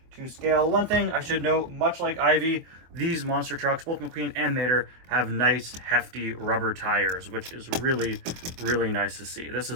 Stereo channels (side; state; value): left; late; 24 ms